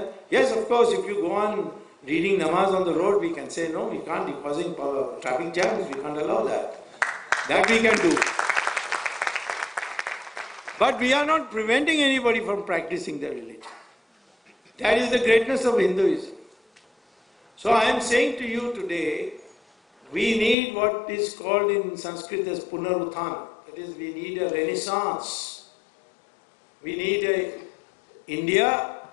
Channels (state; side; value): drops out; right; at 20.6 s